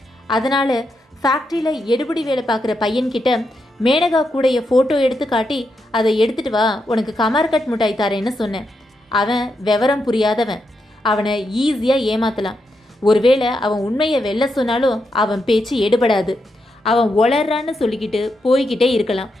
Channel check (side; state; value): both; normal; correlation 0.83